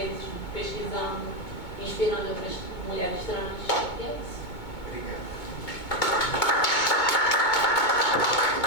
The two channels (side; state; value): right; late; 2.2 ms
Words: pesquisando, inspirando outras mulheres trans. E é isso. Obrigada.